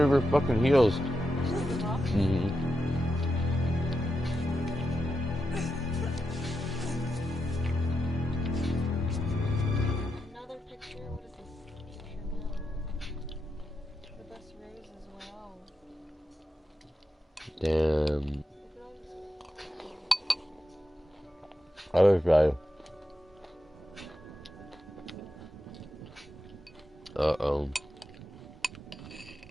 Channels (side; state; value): both; normal; correlation 0.87